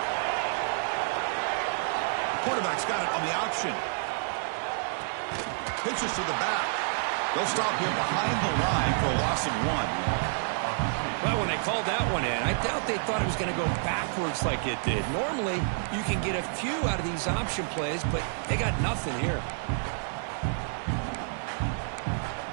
The quarterback's got it on the option. Pitches to the back. They'll stop him behind the line for a loss of 1. Well, when they called that one in, I doubt they thought it was going to go backwards like it did. Normally, you can get a few out of these option plays, but they got nothing here.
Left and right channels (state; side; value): silent; left; digital silence